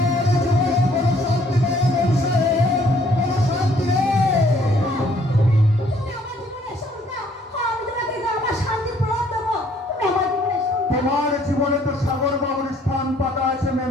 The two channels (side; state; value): both; normal; correlation 0.62